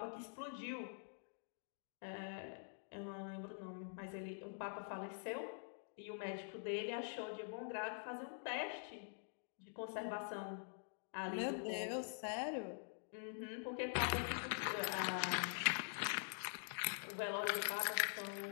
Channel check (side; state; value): right; silent; digital silence